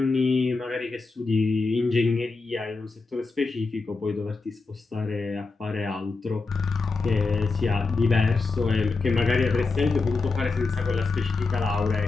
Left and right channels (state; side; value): quieter; right; 4.0 dB